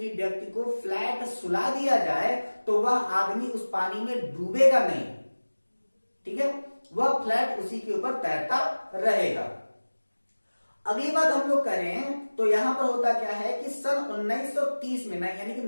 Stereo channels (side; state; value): both; inverted; correlation -1.00